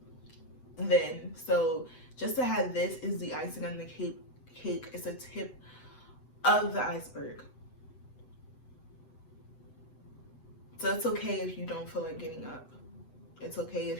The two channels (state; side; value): late; right; 8.0 ms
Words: then. So just to have this is the icing on the cake. It's a tip of the iceberg. So it's okay if you don't feel like getting up. It's okay